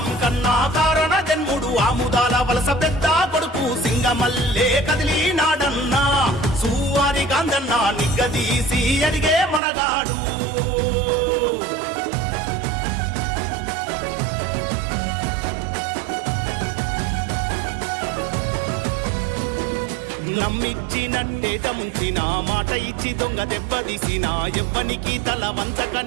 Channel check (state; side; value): drops out; left; at 9.6 s